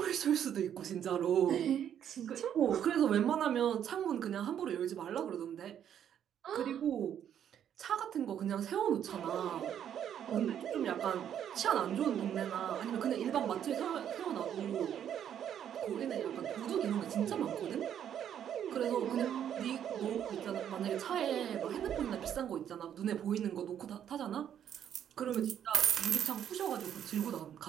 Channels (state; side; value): quieter; left; 9.6 dB